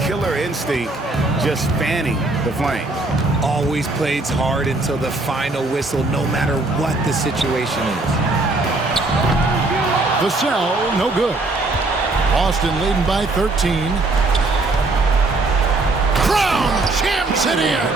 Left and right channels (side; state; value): left; quieter; 3.1 dB